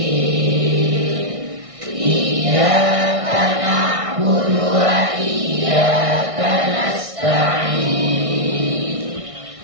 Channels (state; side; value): late; left; 1.6 ms